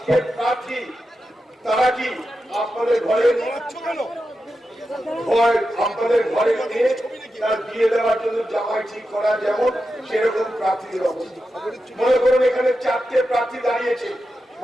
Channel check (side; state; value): both; normal; correlation 0.89